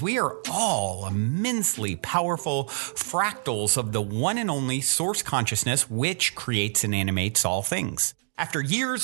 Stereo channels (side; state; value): left; silent; digital silence